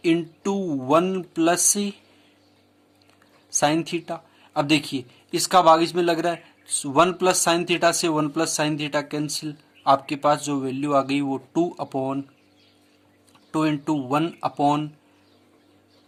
into 1 plus sine theta. अब देखिए इसका भाग इसमें लग रहा है, 1 प्लस साइन थीटा से 1 प्लस साइन थीटा कैंसिल, आपके पास जो वैल्यू आ गई वो 2 इंटू 1 अपॉन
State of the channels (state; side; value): identical; both; correlation 1.00